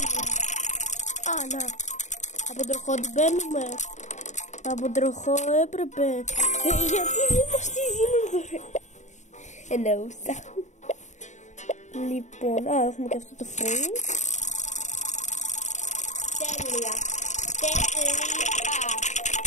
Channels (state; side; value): late; right; 0.34 ms